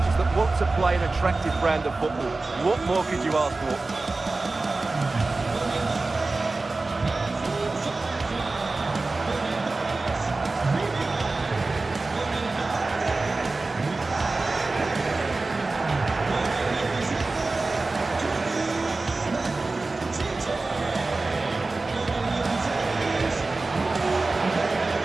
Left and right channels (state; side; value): quieter; left; 3.4 dB